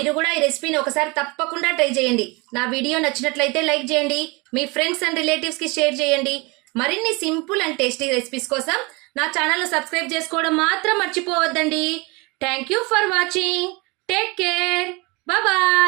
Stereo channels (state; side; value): quieter; left; 26.7 dB